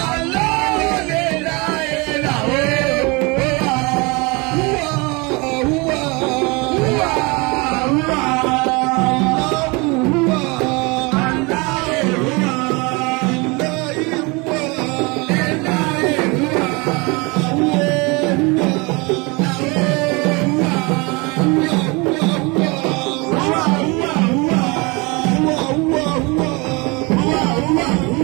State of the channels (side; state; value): left; quieter; 27.3 dB